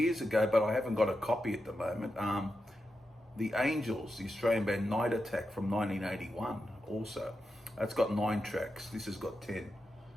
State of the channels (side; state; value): both; normal; correlation 0.88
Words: ago, but I haven't got a copy at the moment. The Angels, the Australian band Night Attack from 1981 also. That's got 9 tracks. This has got 10.